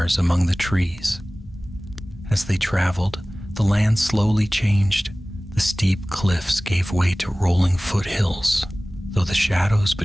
among the trees. As they traveled, the land slowly changed. The steep cliffs gave way to rolling foothills, though the shadows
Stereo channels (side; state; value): both; normal; correlation 0.98